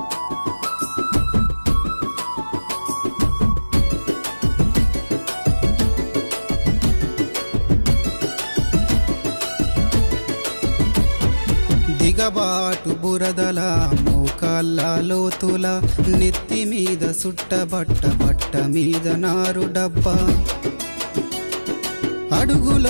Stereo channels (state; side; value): inverted; both; correlation -1.00